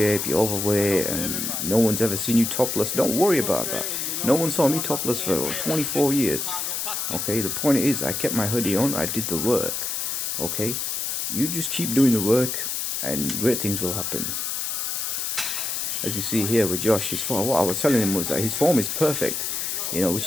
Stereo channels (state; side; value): noise; left; hiss, 2 dB below the sound